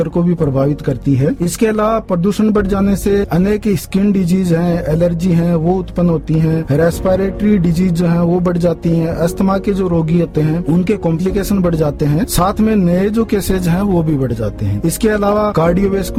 को भी प्रभावित करती है। इसके अलावा प्रदूषण बढ़ जाने से अनेक स्किन डिजीज हैं, एलर्जी हैं, वो उत्पन्न होती हैं। रेस्पिरेटरी डिजीज जो हैं वो बढ़ जाती हैं। अस्थमा के जो रोगी होते हैं उनके कॉम्प्लिकेशन बढ़ जाते हैं। साथ में नए जो केसेज हैं वो भी बढ़ जाते हैं। इसके अलावा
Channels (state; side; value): identical; both; correlation 1.00